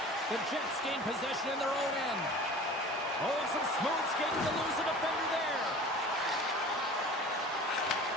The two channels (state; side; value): normal; both; correlation 0.41